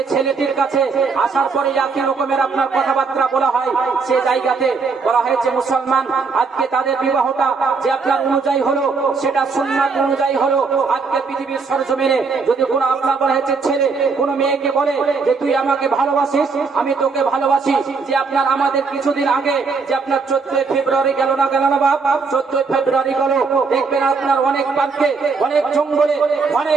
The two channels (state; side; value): quieter; left; 4.7 dB